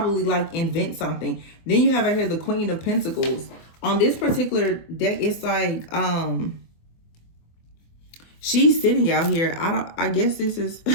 like invent something. Then you have right here the Queen of Pentacles. On this particular deck, it's like, she's sitting out here. I guess this is,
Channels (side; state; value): right; late; 24 ms